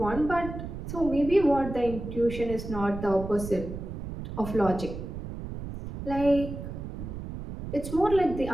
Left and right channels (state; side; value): noise; right; rumble, 8 dB below the sound